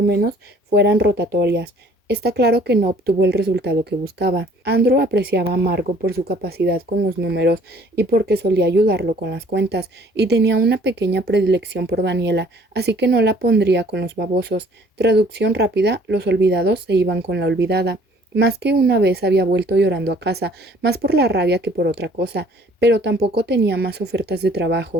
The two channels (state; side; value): normal; both; correlation 0.56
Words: menos fueran rotatorias. Está claro que no obtuvo el resultado que buscaba. Andrew apreciaba a Margot por su capacidad con los números y porque solía ayudarlo con las cuentas, y tenía una pequeña predilección por Daniela, así que no la pondría con los babosos. Traducción rápida: los olvidados se iban con la olvidada. Más que una vez había vuelto llorando a casa, más por la rabia que por otra cosa, pero tampoco tenía más ofertas de